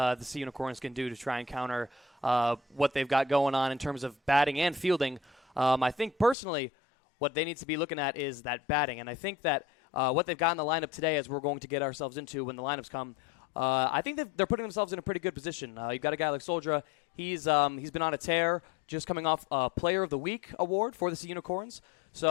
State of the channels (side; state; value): right; drops out; at 6.4 s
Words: Sea Unicorns can do to try and counter what they've got going on in terms of batting and fielding. I think personally what they need to be looking at is that batting, and I think that what they've got in the lineup today, as we're going to get ourselves into when the lineups come, I think they're putting themselves in a pretty good position. You've got a guy like Soldra. He's been on a tear, just coming off a Player of the Week award for the Sea Unicorns.